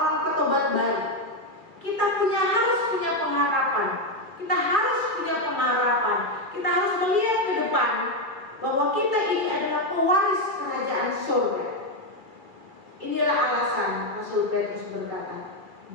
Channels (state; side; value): late; left; 2.3 ms